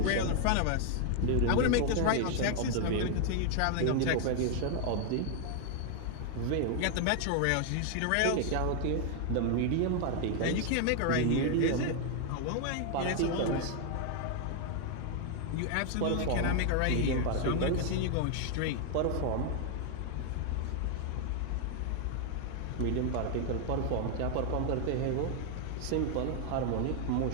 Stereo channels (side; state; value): both; different; correlation 0.00